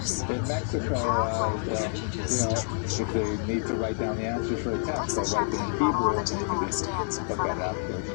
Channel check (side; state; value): right; silent; digital silence